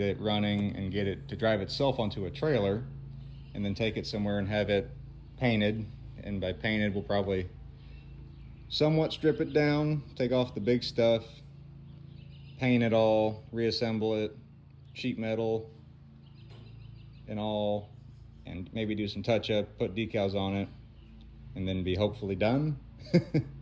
it running and get it to drive itself onto a trailer, and then take it somewhere and have it painted. And by painted, we'll probably somewhat strip it down, take off the big stuff, paint it all, reassemble it, sheet metal and all, and maybe do some touch up, put decals on it, and then be hopefully done.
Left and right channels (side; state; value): both; identical; correlation 1.00